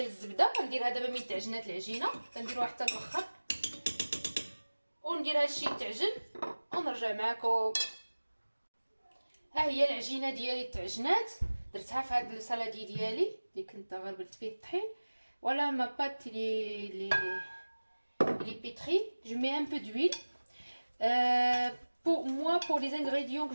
الزبده. غنديرها دابا من تعجنات العجينه، كنديروها حتى الاخر وندير هادشي يتعجن ونرجع معكم. ها هي العجينه ديالي تعجنات، درتها في هاد السالادي ديالي اللي كنت غربلت فيه الطحين. ولا ما بات لي pétrie. Je mets un peu d'huile. Pour moi, pour les ingrédients que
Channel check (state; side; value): inverted; both; correlation -1.00